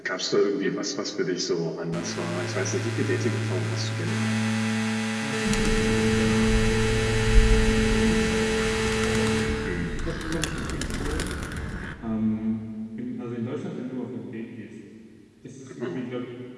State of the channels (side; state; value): both; identical; correlation 1.00